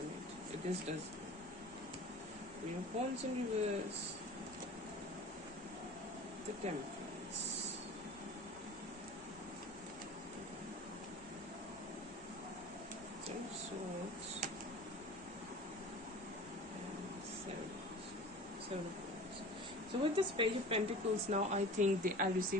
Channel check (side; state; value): right; noise; rumble, 23 dB below the sound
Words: If this does. Queen of Wands in reverse. The Temperance. Ten of Swords. And Seven of Wands. So with this Page of Pentacles now, I think they are